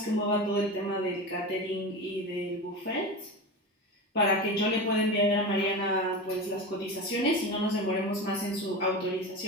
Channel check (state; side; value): normal; both; correlation 0.25